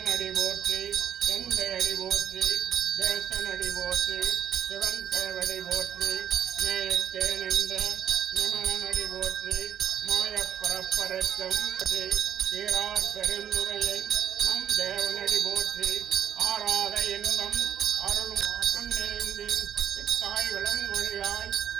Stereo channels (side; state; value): left; quieter; 9.7 dB